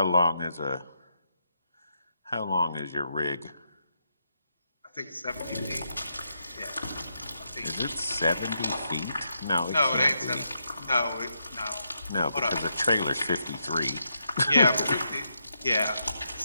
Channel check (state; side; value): inverted; both; correlation -0.82